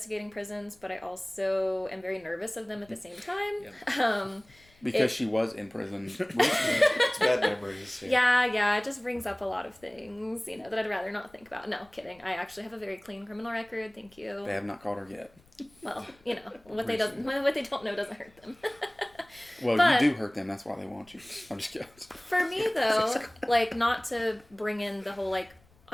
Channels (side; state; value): left; noise; rumble, 29 dB below the sound